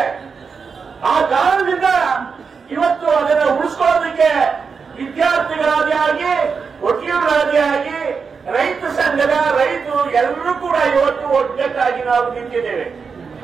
ಆ ಕಾರಣದಿಂದ ಇವತ್ತು ಅದನ್ನು ಉಳಿಸ್ಕೊಳ್ಳೋದಕ್ಕೆ ವಿದ್ಯಾರ್ಥಿಗಳಾದಿ ಆಗಿ, ವಕೀಲರಾದಿ ಆಗಿ, ರೈತ ಸಂಘದ ರೈತರು ಎಲ್ಲರೂ ಕೂಡ ಇವತ್ತು ಒಗ್ಗಟ್ಟಾಗಿ ನಾವು ನಿಂತಿದ್ದೇವೆ.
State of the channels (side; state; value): left; quieter; 5.5 dB